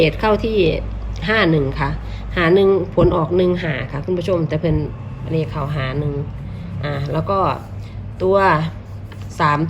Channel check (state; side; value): identical; both; correlation 1.00